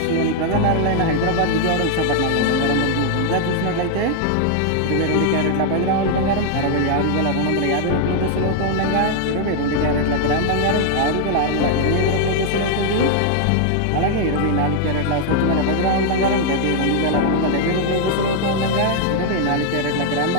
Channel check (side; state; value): both; different; correlation 0.00